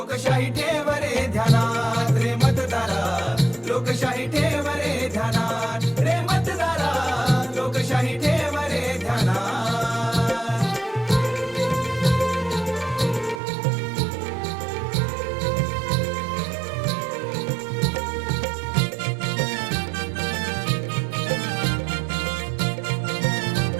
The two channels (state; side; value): drops out; left; at 13.4 s